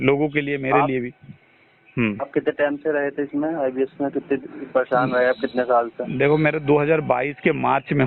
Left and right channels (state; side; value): identical; both; correlation 1.00